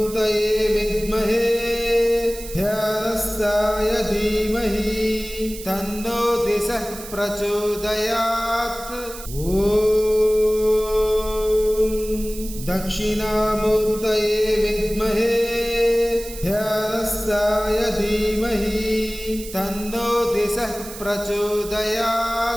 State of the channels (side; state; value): right; noise; hiss, 13 dB below the sound